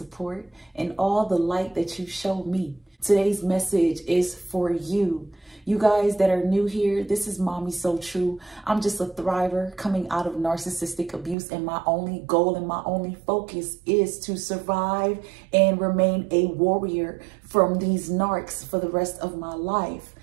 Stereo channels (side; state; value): left; drops out; at 11.4 s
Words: and all the light that you show me. Today's message is for you. You guys that are new here, this is Mommy So True. I'm just a thriver coming out of narcissistic abuse, and my only goal and my only focus is to survive and remain a warrior from these narcs for the rest of my life.